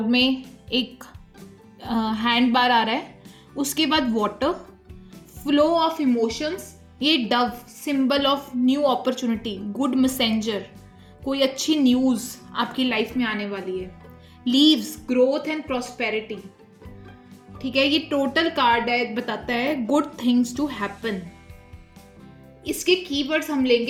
में एक हैंड बार आ रहा है, उसके बाद वाटर, फ्लो ऑफ इमोशंस, ये Dove, symbol of new opportunity, good messenger, कोई अच्छी न्यूज़ आपकी लाइफ में आने वाली है। Leaves, growth and prosperity. ठीक है, ये टोटल कार्ड है, बताता है गुड थिंग्स टू हैपन। इसके कीवर्ड्स हम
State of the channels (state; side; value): identical; both; correlation 1.00